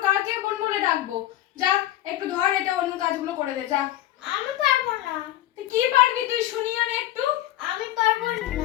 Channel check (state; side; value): quieter; right; 14.0 dB